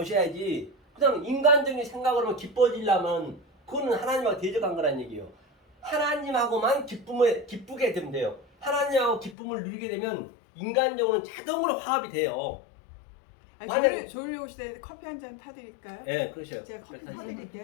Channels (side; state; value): right; drops out; at 9.3 s